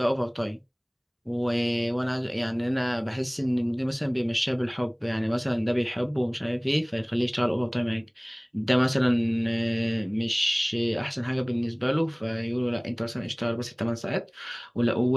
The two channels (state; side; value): identical; both; correlation 1.00